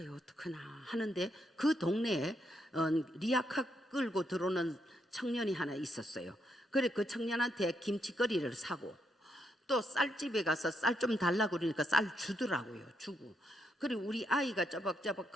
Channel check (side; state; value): both; normal; correlation 0.79